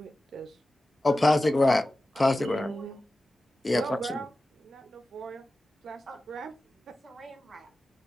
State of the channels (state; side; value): normal; both; correlation 0.94